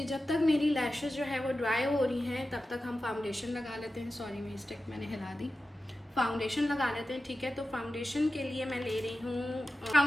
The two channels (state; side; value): normal; both; correlation 0.93